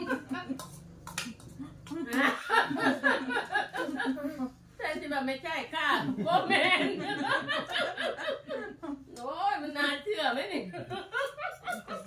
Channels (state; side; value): identical; both; correlation 1.00